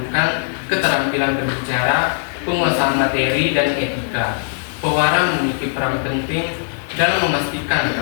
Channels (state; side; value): silent; right; digital silence